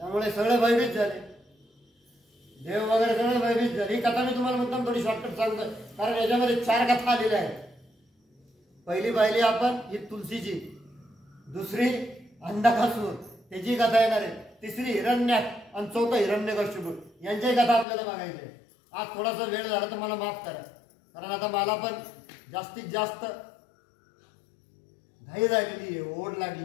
सगळे भयभीत झाले, देव वगैरे सगळे भयभीत झाले. ही कथा मी तुम्हाला मुद्दाम थोडी शॉर्टकट सांगतो, कारण याच्यामध्ये 4 कथा आलेल्या आहेत. पहिली पाहिली आपण ही तुलसीची, दुसरी अंधकासूर त्याची कथा येणार आहे, तिसरी हिरण्याक्ष आणि चौथं हिरण्यकश्यप यांची कथा आपल्याला बघायची आहे. आज थोडासा वेळ झाला तर मला माफ करा, कारण आता मला पण जास्तीत जास्त घाई झालेली आहे, ओढ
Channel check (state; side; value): drops out; right; at 17.9 s